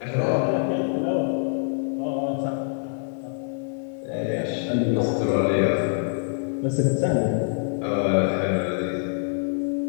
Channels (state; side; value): silent; right; digital silence